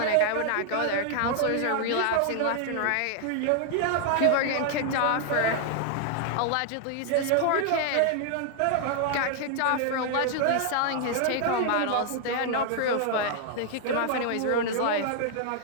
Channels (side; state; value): both; different; correlation 0.00